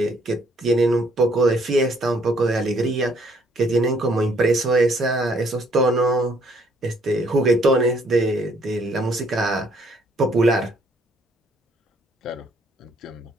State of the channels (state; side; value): normal; both; correlation 0.66